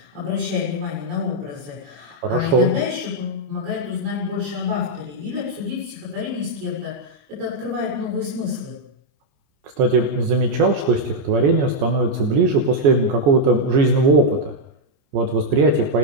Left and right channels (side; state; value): left; late; 14 ms